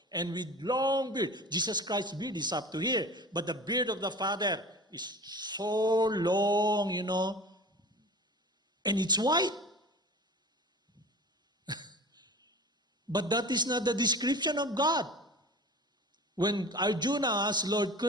And with long beard. Jesus Christ's beard is up to here. But the beard of the Father is so long, and it's white. But that is not the description of God. When Arjuna asked Lord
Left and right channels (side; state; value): both; normal; correlation 0.38